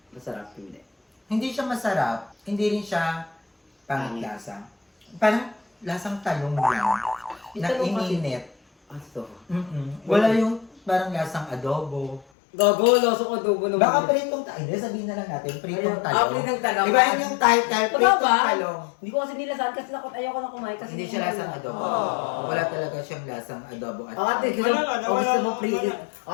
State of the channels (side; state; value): right; drops out; at 12.2 s